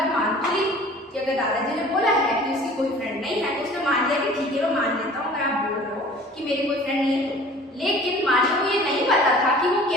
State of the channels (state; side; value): normal; both; correlation 0.46